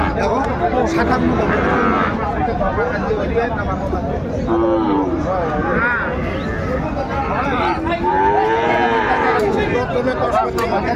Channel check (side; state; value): both; identical; correlation 1.00